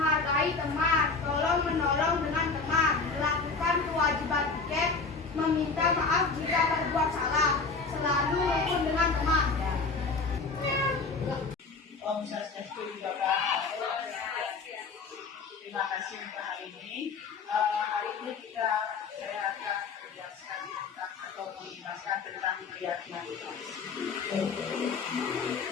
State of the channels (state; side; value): quieter; right; 4.5 dB